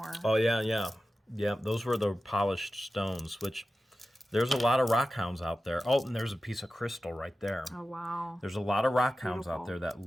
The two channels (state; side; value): normal; both; correlation 0.94